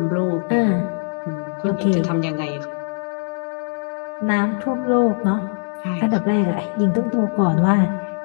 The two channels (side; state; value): right; silent; 57 dB below the other